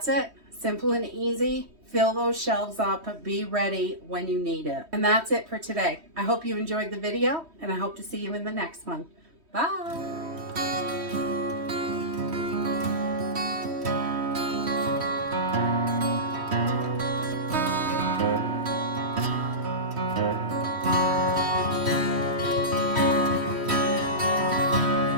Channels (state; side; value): late; left; 3.1 ms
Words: it. Simple and easy. Fill those shelves up. Be ready when you need it. And that's it for today. I hope you enjoyed the video, and I hope to see you in the next one. Bye.